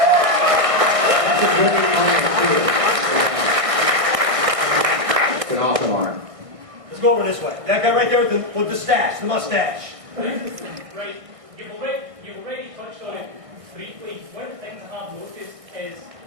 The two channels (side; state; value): left; late; 1.6 ms